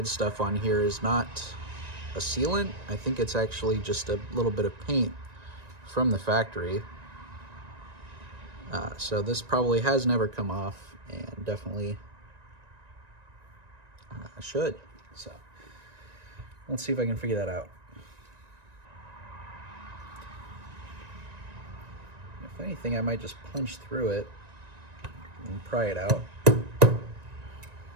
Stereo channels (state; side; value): late; left; 1.9 ms